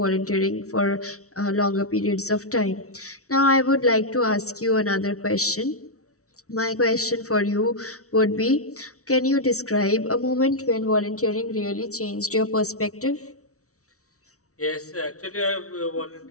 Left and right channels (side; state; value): right; late; 0.64 ms